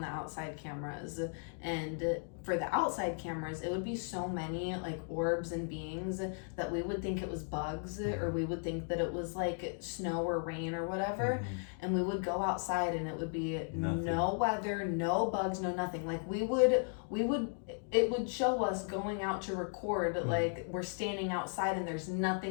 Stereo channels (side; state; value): right; silent; 54 dB below the other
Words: outside cameras. And for the outside cameras, it would be so many like orbs and beings that we would think it was bugs, or we would think that it was like snow or rain or whatever. And we would go outside and it would be no weather, no bugs, no nothing. Like it would show us going out to record, like we're standing outside and there's